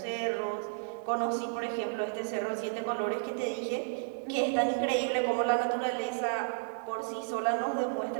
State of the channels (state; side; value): silent; left; digital silence